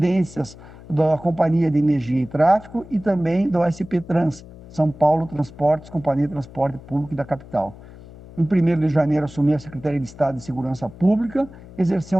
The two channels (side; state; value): left; noise; hum, 19 dB below the sound